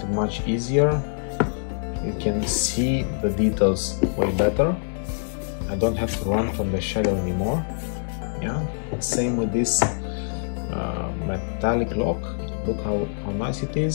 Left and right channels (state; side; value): silent; right; digital silence